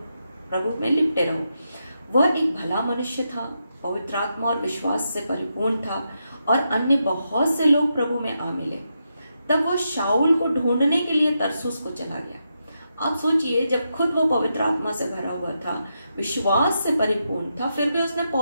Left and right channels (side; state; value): both; inverted; correlation -0.84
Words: प्रभु में लिपटे रहो। वह एक भला मनुष्य था, पवित्र आत्मा और विश्वास से परिपूर्ण था, और अन्य बहुत से लोग प्रभु में आ मिले। तब वो शाऊल को ढूंढने के लिए तरसुस को चला गया। आप सोचिए, जब खुद वो पवित्र आत्मा से भरा हुआ था, विश्वास से परिपूर्ण था, फिर भी उसने